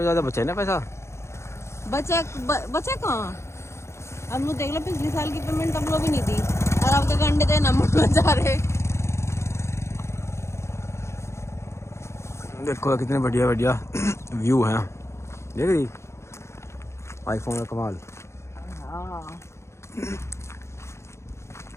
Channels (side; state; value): right; late; 0.13 ms